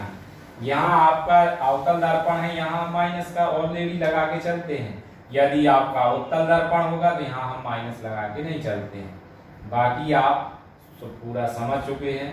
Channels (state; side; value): identical; both; correlation 1.00